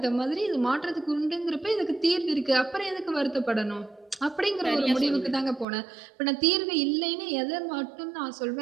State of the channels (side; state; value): left; drops out; at 5.7 s